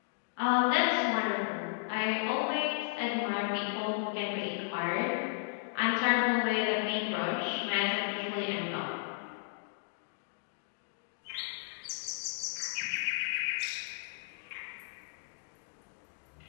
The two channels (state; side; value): silent; right; digital silence